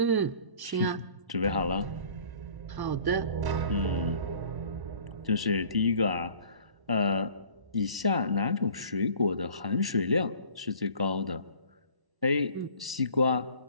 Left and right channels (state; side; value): late; left; 1.1 ms